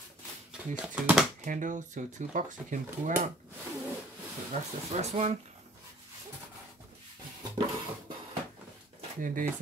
these 2 handles, so 2 boxes you can pull out. So that's the first one. Then there's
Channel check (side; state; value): both; normal; correlation 0.53